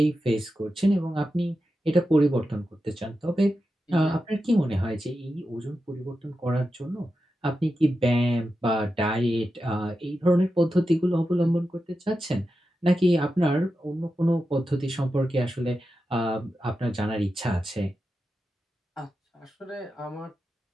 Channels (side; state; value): both; normal; correlation 0.90